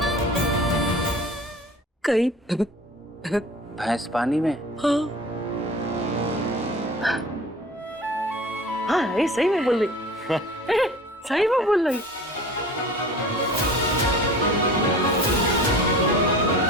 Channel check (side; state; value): both; normal; correlation 0.42